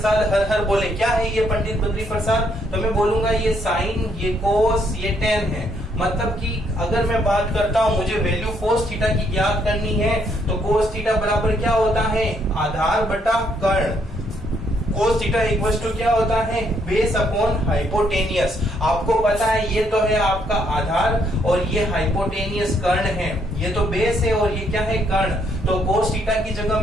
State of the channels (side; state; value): both; normal; correlation 0.71